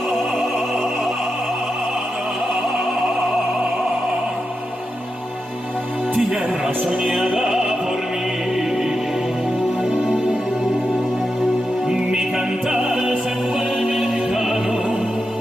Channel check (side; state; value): both; normal; correlation 0.88